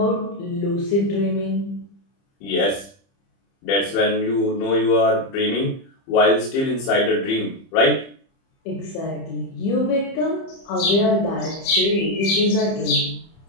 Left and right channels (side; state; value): right; late; 30 ms